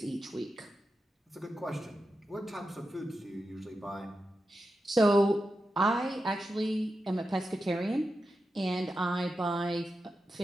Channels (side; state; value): both; normal; correlation 0.90